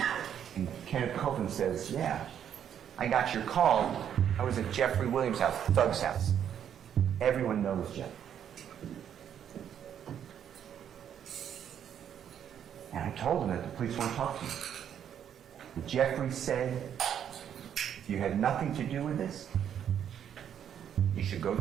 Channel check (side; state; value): left; quieter; 9.2 dB